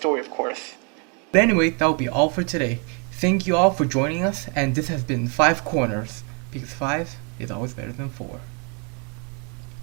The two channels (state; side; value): quieter; left; 36.6 dB